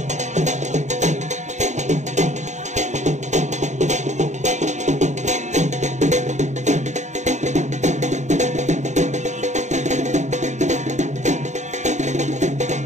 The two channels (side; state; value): left; late; 0.34 ms